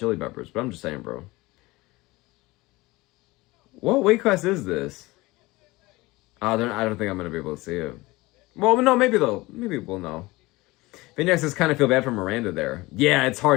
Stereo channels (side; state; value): right; quieter; 21.1 dB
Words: Peppers, but I'm just saying, bro. What weight class is this? I don't think I'm going to be able to see it. Well, no, maybe we'll know. Vignac says, kind of feel bad for Miranda there. Yeah, it's